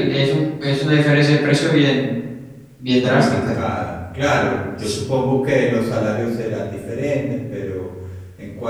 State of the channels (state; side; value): identical; both; correlation 1.00